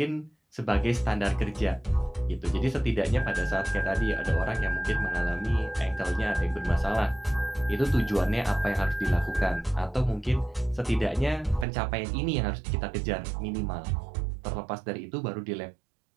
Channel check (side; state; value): left; drops out; at 11.7 s